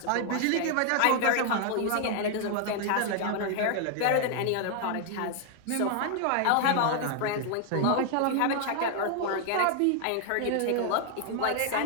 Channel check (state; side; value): different; both; correlation 0.00